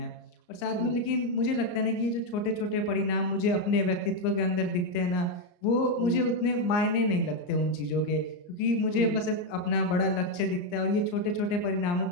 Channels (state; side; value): late; right; 34 ms